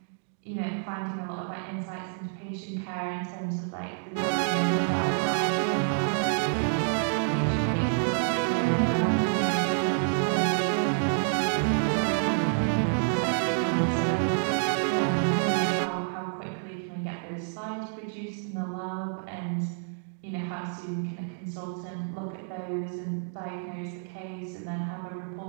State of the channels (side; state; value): left; silent; 59 dB below the other